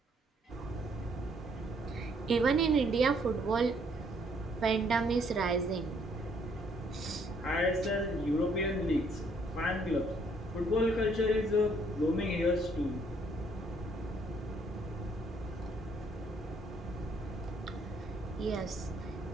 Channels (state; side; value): normal; both; correlation 0.67